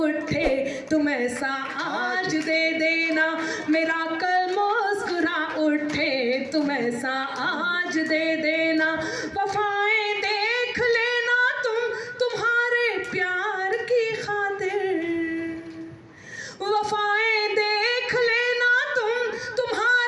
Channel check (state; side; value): identical; both; correlation 1.00